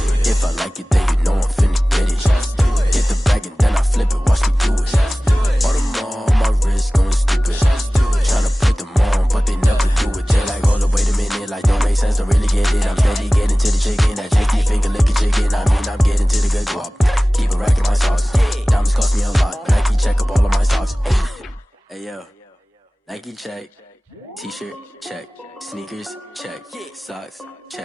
If I like it, then you know I'm finna get it. Hit the bag and then I flip it, watch me do it. All them on my wrist going stupid. Tryna put them on, but they never do it. They like, hold up, wait a minute, like don't make sense, don't really get it. I'm steady getting to the chicken, that tricky finger licking chicken. I mean, I'm getting to the good guap. Keep a rack in my socks. Diamonds cost me a lot. Nike check up all of my socks. Hey yo, Nike check. T-shirt check. Sneakers check. Socks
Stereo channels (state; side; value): normal; both; correlation 0.98